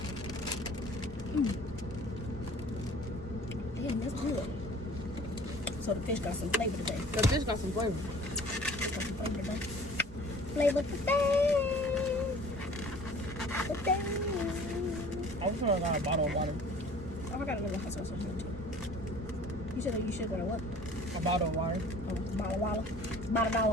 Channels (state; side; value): normal; both; correlation 0.48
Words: Damn, that's good. So the fish got some flavor today. The fish got some flavor. Got some flavor today. Flavor today. Today. I was gonna got a bottle of water. Oh, I got another hot sauce on here too. You should go to what? A bottle of water. Oh, bottle of water.